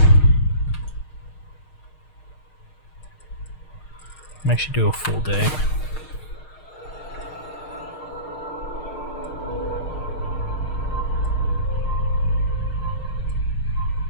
I'm actually do a full day.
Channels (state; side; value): late; right; 6.5 ms